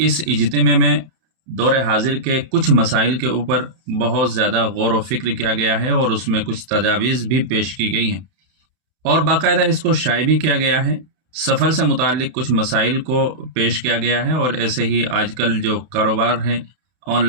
इज्तिमा में दौर हाजिर के कुछ मसाइल के ऊपर बहुत ज़्यादा गौर व फिक्र किया गया है और उसमें कुछ तजावीज़ भी पेश की गई हैं और बाकायदा इसको शाये भी किया गया है। सफ़र से मुताल्लिक़ कुछ मसाइल को पेश किया गया है और ऐसे ही आजकल जो कारोबार हैं,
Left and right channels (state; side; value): late; left; 32 ms